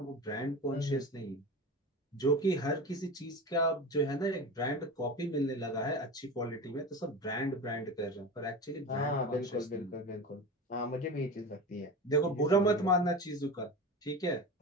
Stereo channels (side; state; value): both; normal; correlation 0.28